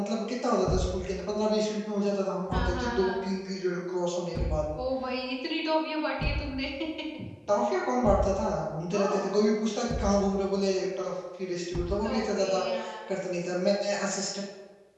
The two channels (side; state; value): both; identical; correlation 1.00